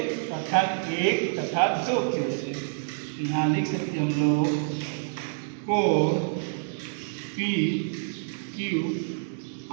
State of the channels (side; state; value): left; silent; digital silence